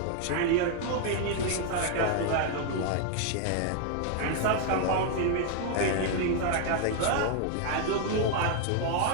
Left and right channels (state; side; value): different; both; correlation 0.00